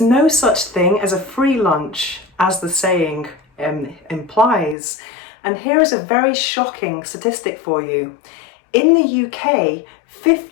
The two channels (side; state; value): right; drops out; at 4.8 s